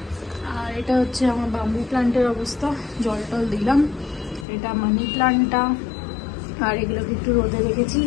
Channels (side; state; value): right; drops out; at 4.5 s